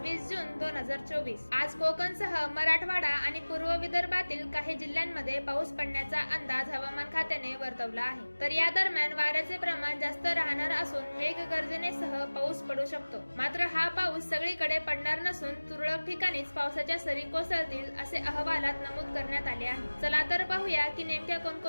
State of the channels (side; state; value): both; inverted; correlation -1.00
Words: जून 2024। आज कोकणसह मराठवाडा आणि पूर्व विदर्भातील काही जिल्ह्यांमध्ये पाऊस पडण्याचा अंदाज हवामान खात्याने वर्तवला आहे। तर या दरम्यान वाऱ्याचे प्रमाण जास्त राहणार असून मेघगर्जनेसह पाऊस पडू शकतो। मात्र हा पाऊस सगळीकडे पडणार नसून तुरळक ठिकाणीच पावसाच्या सरी कोसळतील असे अहवालात नमूद करण्यात आले आहे। चला तर पाहूया की नेमक्या